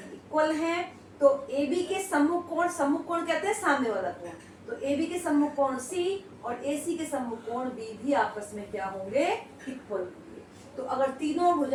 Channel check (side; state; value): both; identical; correlation 1.00